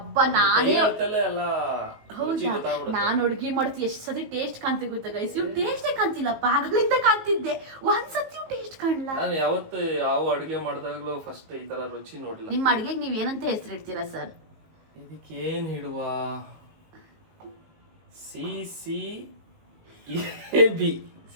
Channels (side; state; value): left; late; 19 ms